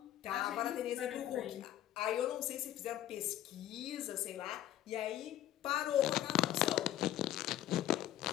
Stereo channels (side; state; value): right; quieter; 12.6 dB